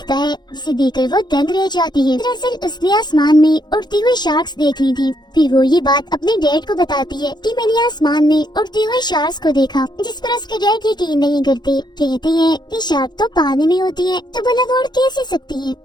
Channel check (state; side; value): late; right; 0.21 ms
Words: है जिसे देखकर वो दंग रह जाती है। दरअसल उसने आसमान में उड़ती हुई शार्क्स देख ली थी। फिर वो ये बात अपने डैड को बताती है कि मैंने आसमान में उड़ती हुई शार्क्स को देखा, जिस पर उसके डैड यकीन नहीं करते। कहते हैं कि शार्क तो पानी में होती है तो भला वो उड़ कैसे सकती है।